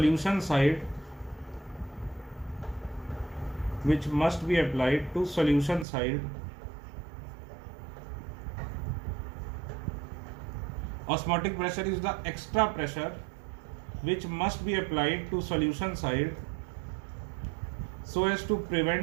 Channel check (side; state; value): left; drops out; at 5.9 s